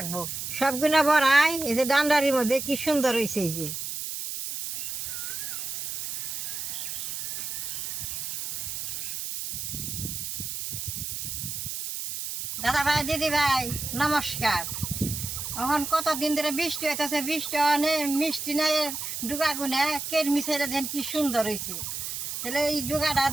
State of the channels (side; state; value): right; noise; hiss, 5 dB below the sound